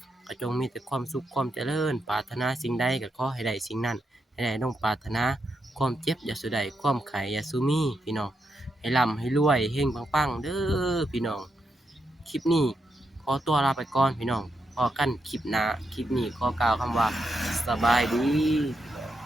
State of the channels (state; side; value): normal; both; correlation 0.83